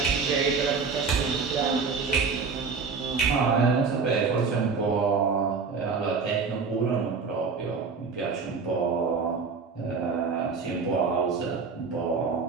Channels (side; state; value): left; quieter; 5.0 dB